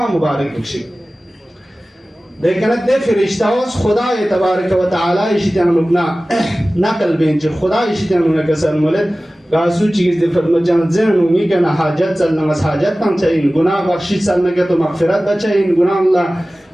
مبارک بخشی لیکن دے فرشتاوس خدا تبارک و تعالی اشتیان لبنا نقل بینچ خدا اشتیان لبنا کسر مولد گاسو چیز دے فرمت جان زین امی کنا حاجت چلنا مس حاجت تم چاہین گناہ بخشی چلنا کے تو مغفرت بچائین گناہ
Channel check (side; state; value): both; normal; correlation 0.97